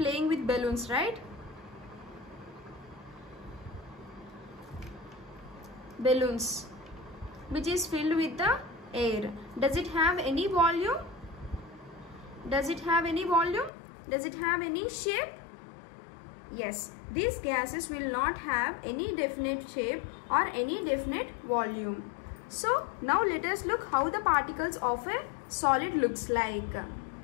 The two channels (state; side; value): drops out; right; at 13.7 s